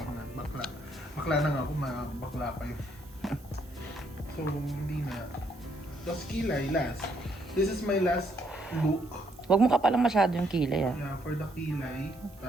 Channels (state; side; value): noise; right; hiss, 26 dB below the sound